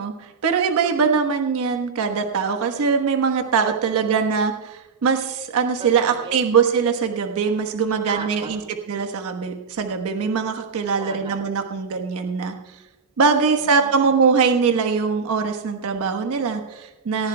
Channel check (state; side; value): quieter; left; 5.3 dB